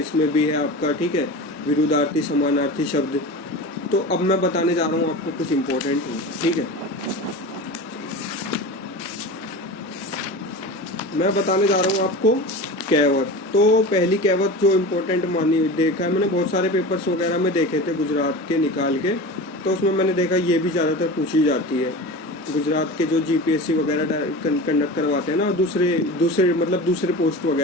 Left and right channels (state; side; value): normal; both; correlation 0.31